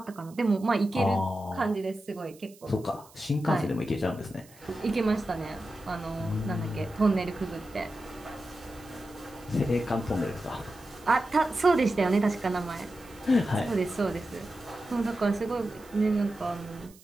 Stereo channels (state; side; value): noise; right; hiss, 25 dB below the sound